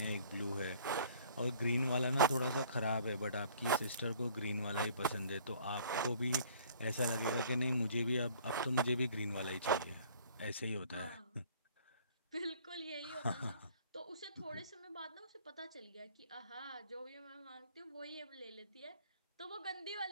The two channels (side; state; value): both; inverted; correlation -0.54